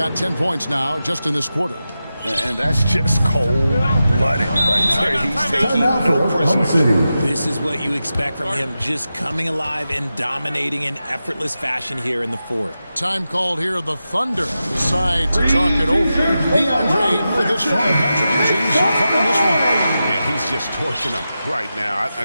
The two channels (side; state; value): both; inverted; correlation -0.91